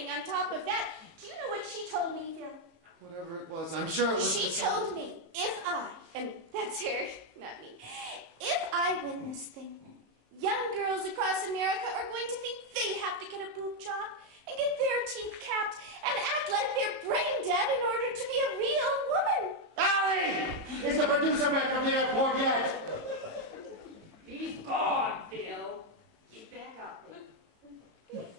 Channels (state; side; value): late; left; 18 ms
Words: on top of that. Do you know what she told me, Phil? Whatever it was, I'm sure it was... She told me if I, and that's her, not me, if I win this thing, young girls across America are going to think they have to get a boob job and get their teeth capped and act like they're brain dead in order to be a real woman. Allie! Is the producer back from the airport yet? He's gone, Phil. Get back up there.